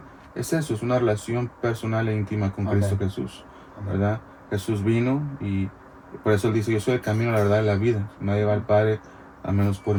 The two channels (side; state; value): both; identical; correlation 1.00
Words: Es eso, es una relación personal e íntima con Amén. Cristo Jesús, ¿verdad? Jesús vino y por eso él dice, yo soy el camino, la verdad y la vida. Nadie va al Padre a menos por